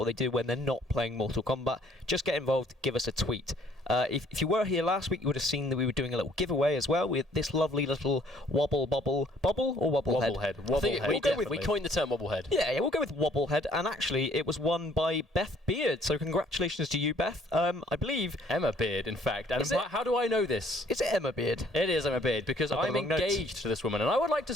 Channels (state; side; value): normal; both; correlation 0.60